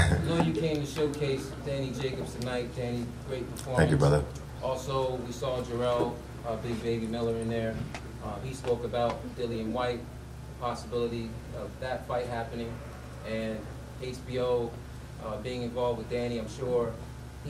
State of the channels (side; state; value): both; identical; correlation 1.00